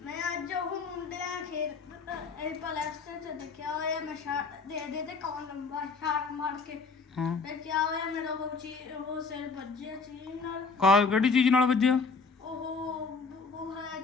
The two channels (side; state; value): right; quieter; 4.5 dB